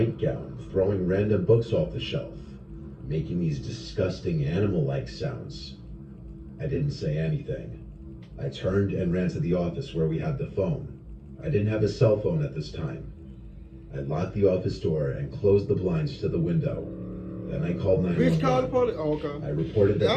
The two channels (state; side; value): identical; both; correlation 1.00